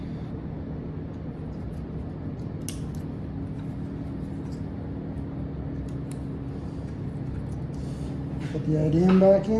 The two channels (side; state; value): both; identical; correlation 1.00